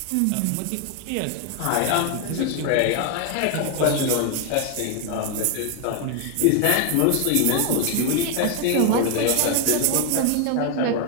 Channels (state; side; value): different; both; correlation 0.01